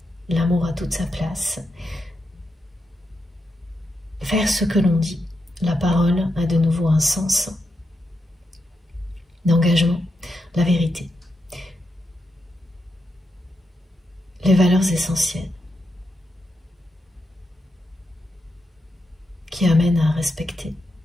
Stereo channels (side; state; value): both; normal; correlation 0.85